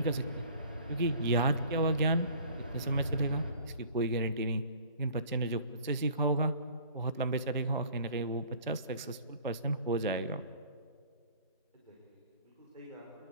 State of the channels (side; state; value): both; inverted; correlation -0.49